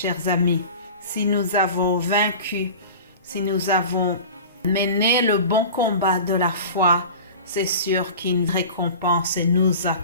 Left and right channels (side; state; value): both; inverted; correlation -0.36